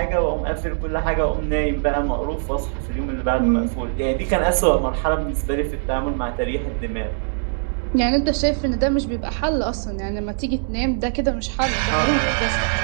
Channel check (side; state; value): left; silent; 62 dB below the other